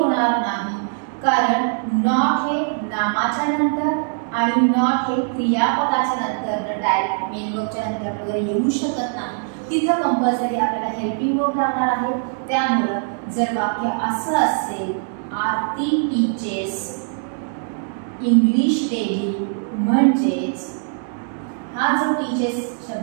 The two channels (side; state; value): left; silent; 65 dB below the other